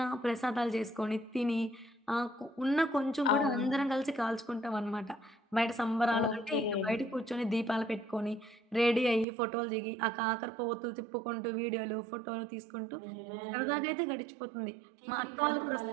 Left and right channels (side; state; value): left; drops out; at 9.2 s